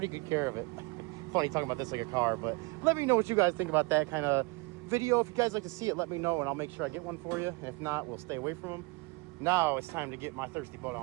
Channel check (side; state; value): left; quieter; 26.6 dB